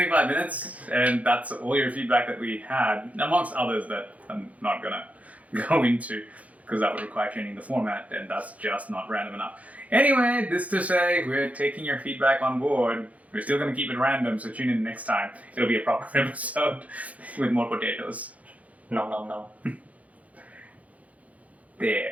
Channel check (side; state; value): left; late; 0.069 ms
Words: minutes, and that's all your feedback that we had, amongst others that I'm not gonna go into, because that would require changing the format, and that's just not random enough. Anyway, this to say, we're taking your feedback on board. We're still gonna keep it random, so tune in next time. It'll be a proper episode with more potatoes. No.